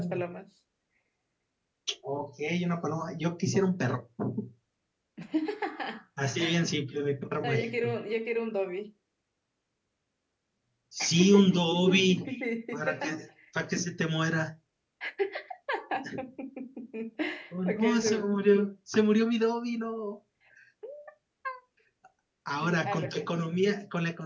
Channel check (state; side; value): identical; both; correlation 1.00